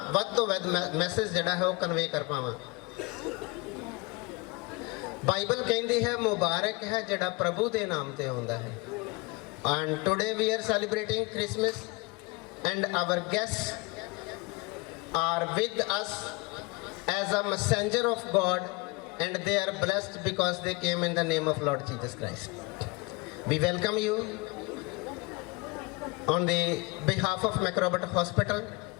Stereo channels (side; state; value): right; quieter; 26.1 dB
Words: वध तो वध मैसेज जिहड़ा है वो कन्वे कर पावां। बाइबल कहती है मुबारक है जिहड़ा प्रभु के नाम ते आउंदा है। And today we are celebrating Christmas and our guests are with us as a messenger of God, and they are blessed because they came in the name of Lord Jesus Christ. We welcome you on the behalf of Macrobot Hospital,